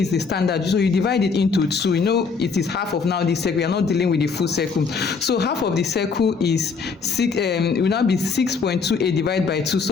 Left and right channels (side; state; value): right; quieter; 5.1 dB